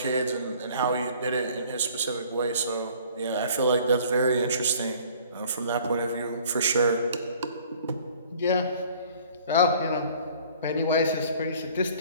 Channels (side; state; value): both; inverted; correlation -0.53